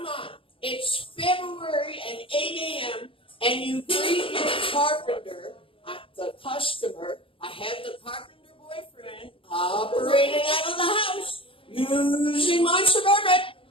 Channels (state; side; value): late; right; 0.26 ms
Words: on. It's February and 8 a.m. and you greet your carpenter, the customer. I have the carpenter boyfriend operating out of the house using my Suburban,